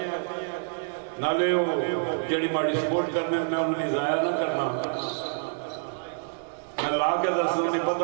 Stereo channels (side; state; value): left; silent; digital silence